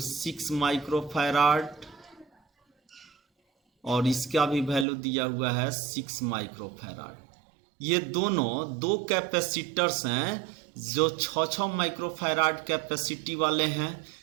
6 microfarad और इसका भी वैल्यू दिया हुआ है 6 माइक्रोफैराड। ये दोनों दो कैपेसिटर्स हैं जो 6-6 माइक्रोफैराड कैपेसिटी वाले हैं।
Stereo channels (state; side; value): drops out; left; at 4.9 s